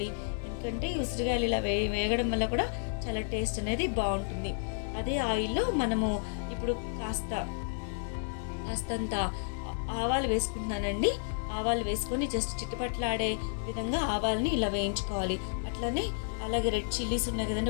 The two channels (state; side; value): silent; right; digital silence